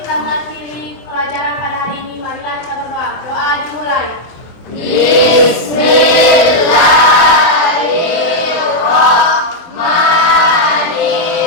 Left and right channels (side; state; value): right; late; 24 ms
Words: mengakhiri pelajaran pada hari ini, marilah kita berdoa. Doa dimulai.